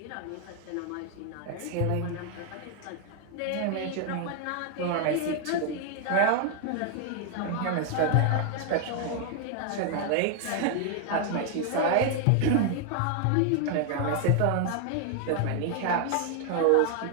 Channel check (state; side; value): different; both; correlation 0.00